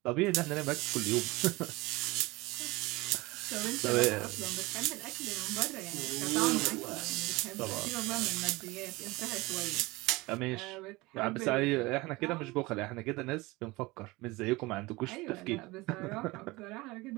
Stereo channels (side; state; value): left; quieter; 22.1 dB